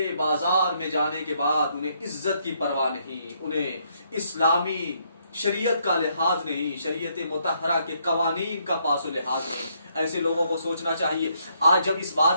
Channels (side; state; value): both; inverted; correlation -0.72